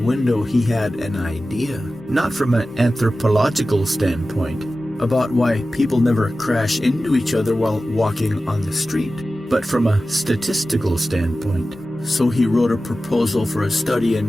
he had an idea, not from an anthropological standpoint, about why people never crash into each other while walking on the street, but from a statistical standpoint. So he wrote a proposal for a study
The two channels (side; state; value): both; normal; correlation 0.95